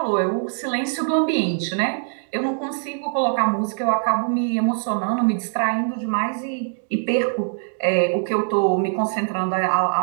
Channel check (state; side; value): silent; left; digital silence